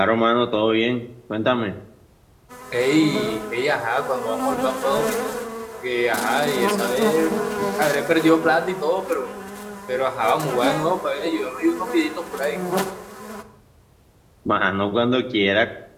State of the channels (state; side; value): identical; both; correlation 1.00